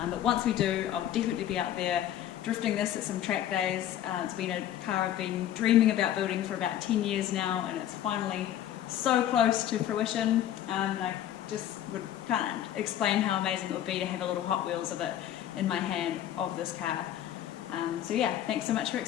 But once we do, I'll definitely be out there drifting this at some track days. It's been a car I've been dreaming about building for about 10 years now, and it's finally so close to fruition. And I just can't explain how amazing it would be to have a little Hot Wheels of it in my hand of this car. So yeah, thanks so much for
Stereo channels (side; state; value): right; quieter; 11.6 dB